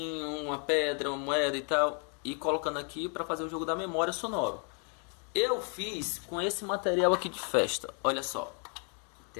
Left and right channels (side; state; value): right; quieter; 39.8 dB